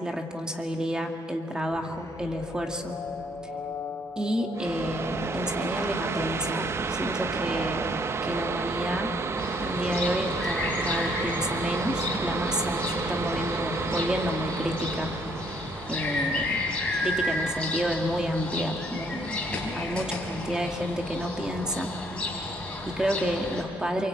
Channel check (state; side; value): normal; both; correlation 0.67